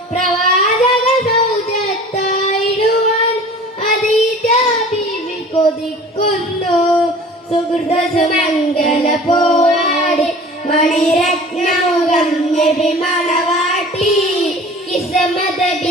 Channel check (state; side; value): normal; both; correlation 0.43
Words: പ്രവാചക സൗജത്തായിടുവാൻ ഖദീജ ബീവി കൊതിക്കുന്നു. സുഹൃത സുമംഗല പോവാടി മണിരത്നമുഖം നബി മണവാട്ടി. കിസ്മത